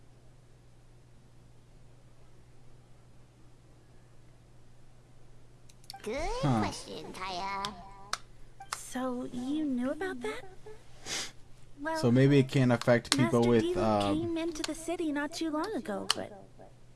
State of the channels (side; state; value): both; identical; correlation 1.00